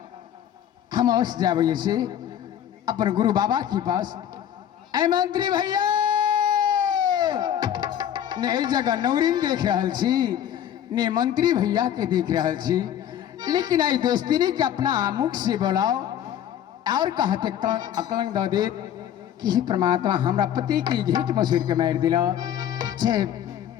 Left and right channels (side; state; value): right; quieter; 10.2 dB